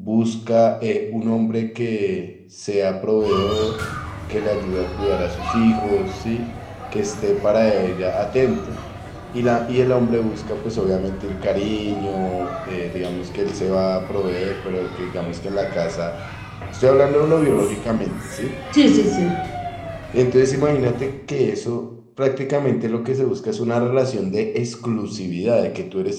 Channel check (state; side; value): identical; both; correlation 1.00